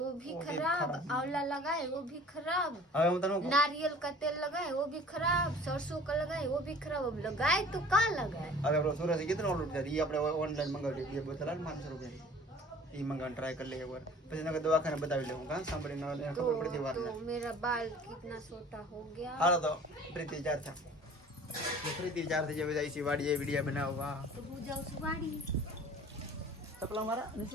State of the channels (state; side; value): normal; both; correlation 0.47